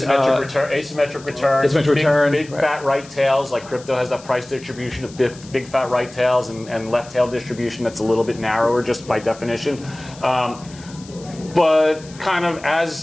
return. Big fat right tails. Like crypto has that price distribution of big fat right tails and left tail distribution that's a little bit narrower just by definition. But kind of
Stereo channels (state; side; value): noise; left; hiss, 21 dB below the sound